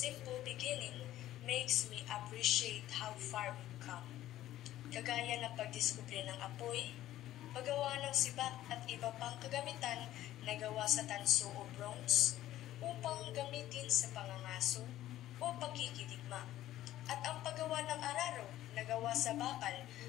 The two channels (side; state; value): right; quieter; 13.9 dB